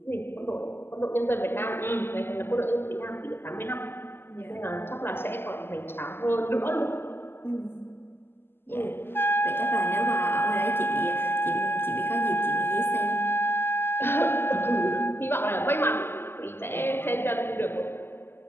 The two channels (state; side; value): late; right; 0.11 ms